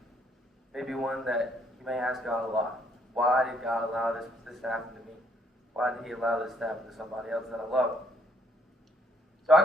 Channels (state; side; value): normal; both; correlation 0.68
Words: Maybe one that you may ask God a lot. Why did God allow this to happen to me? Why did He allow this to happen to somebody else that I love? So